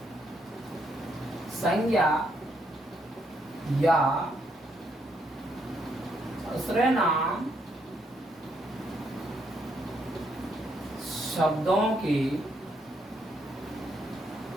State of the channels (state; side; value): normal; both; correlation 0.75